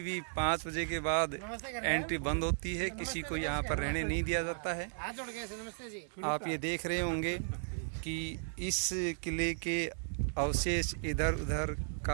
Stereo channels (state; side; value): silent; left; digital silence